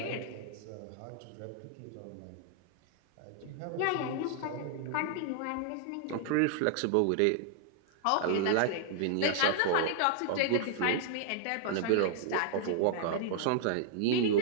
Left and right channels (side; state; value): both; different; correlation 0.00